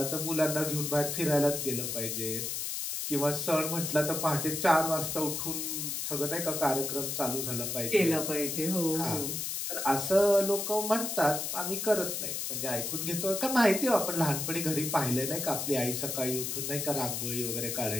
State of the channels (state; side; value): noise; left; hiss, 3 dB below the sound